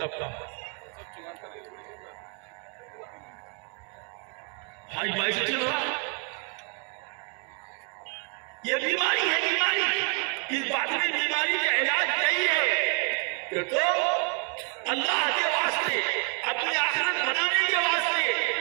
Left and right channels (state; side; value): quieter; left; 38.8 dB